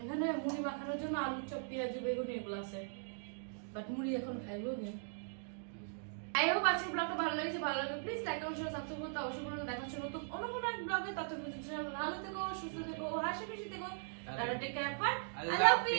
এখানে মুড়ি মাখানোর জন্য আলু চপ, পেঁয়াজ, বেগুন এগুলো আছে, বাট মুড়ি এখন খাইবো না। আই হোপ আজকের ব্লগটা ভালো লেগেছে। ভালো লাগলে please like comment share subscribe করতে অবশ্যই বলুন। দেখা হচ্ছে নতুন অন্য কোনো এক ব্লগে। ততক্ষণ ভালো থেকো, সুস্থ থেকো, হাসি খুশি থেকো। Tata, take care, bye. Allah Allah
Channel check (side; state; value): left; silent; digital silence